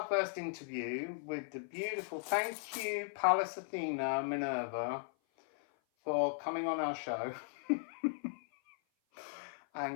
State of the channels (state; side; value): silent; right; 53 dB below the other